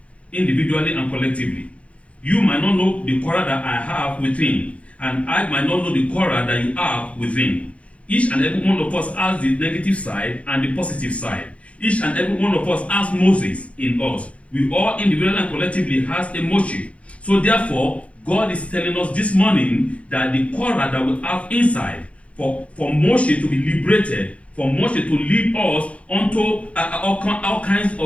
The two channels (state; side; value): late; right; 0.063 ms